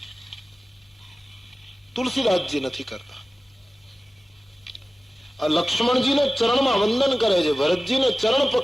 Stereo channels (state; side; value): normal; both; correlation 0.97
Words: તુલસીદાસજી નથી કરતા. લક્ષ્મણજીને ચરણમાં વંદન કરે છે, ભરતજીને ચરણ